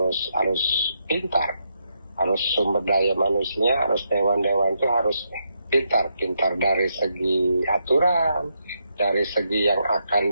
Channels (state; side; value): inverted; both; correlation -0.81